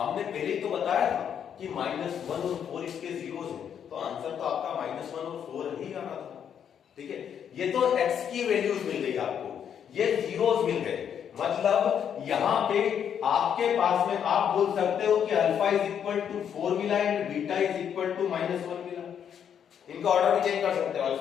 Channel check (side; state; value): right; quieter; 8.4 dB